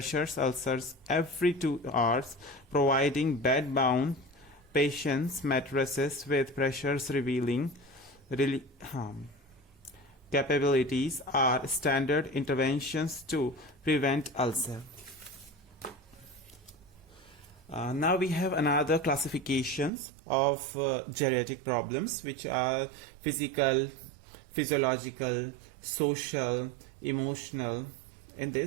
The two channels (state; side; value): drops out; left; at 19.9 s